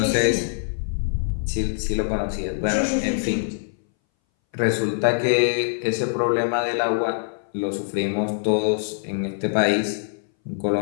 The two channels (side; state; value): right; silent; 61 dB below the other